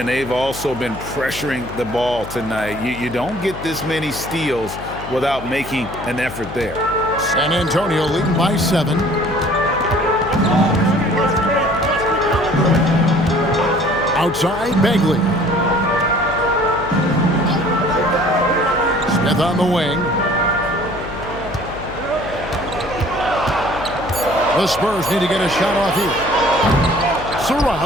they've also been pressuring the ball tonight. You don't get this many steals without making an effort there. San Antonio leading by 7. Outside, Begley. Smith on the wing. The Spurs need to get a shot off here.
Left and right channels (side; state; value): left; noise; hum, 12 dB below the sound